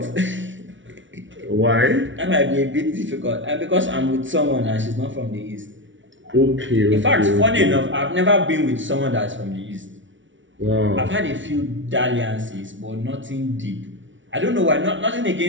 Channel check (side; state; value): left; late; 0.56 ms